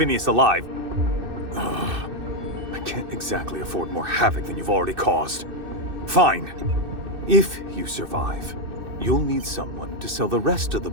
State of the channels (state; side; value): late; left; 2.6 ms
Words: alive, I can't exactly afford more havoc than you've already caused. Fine. If you survive, you'll need someone to sell the rest of the